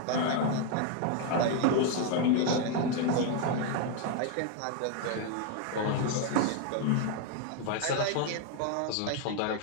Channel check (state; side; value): different; both; correlation 0.01